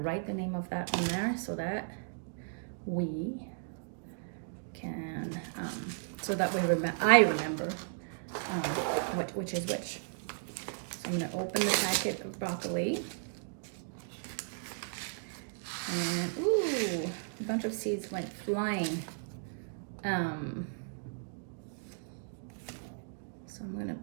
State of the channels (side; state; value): left; silent; digital silence